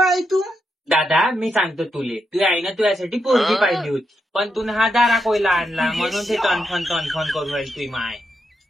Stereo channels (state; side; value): normal; both; correlation 0.83